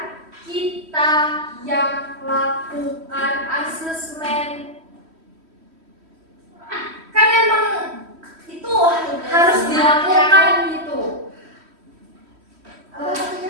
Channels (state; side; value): late; left; 3.1 ms